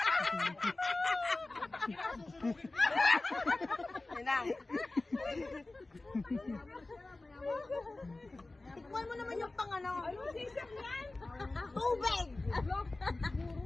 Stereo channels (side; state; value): right; quieter; 3.1 dB